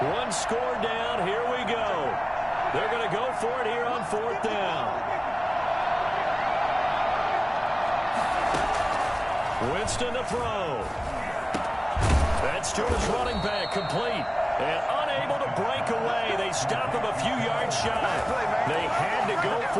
1 score down. Here we go. They're going to go for it here on 4th down. Winston to throw. That's to his running back, complete. And unable to break away. They stop him a few yards shy. They had to go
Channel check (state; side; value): identical; both; correlation 1.00